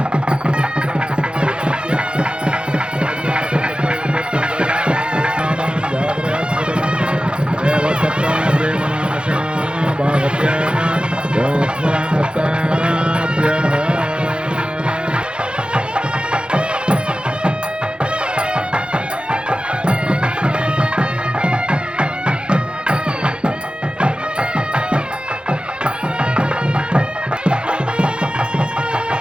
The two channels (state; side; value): late; left; 0.054 ms